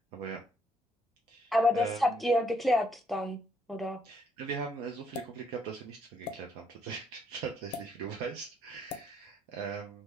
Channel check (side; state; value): both; normal; correlation 0.71